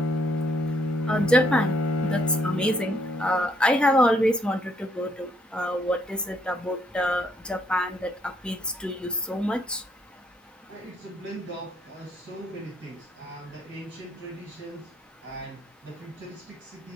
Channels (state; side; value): normal; both; correlation 0.70